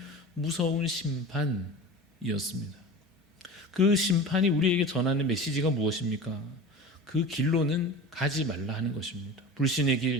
무서운 심판이었습니다. 그 심판이 우리에게 전하는 메시지가 무엇입니까? 그 길로는 가지 말라 하는 것입니다. 불신의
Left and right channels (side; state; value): both; normal; correlation 0.33